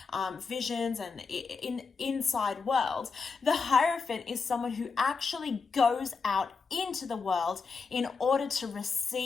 visions and inside world, the Hierophant is someone who actually goes out into the world in order to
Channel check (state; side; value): quieter; right; 4.9 dB